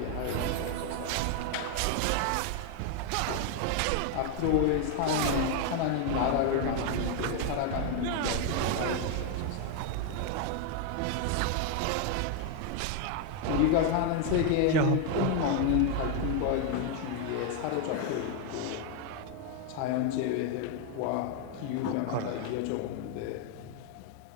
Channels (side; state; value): both; different; correlation 0.01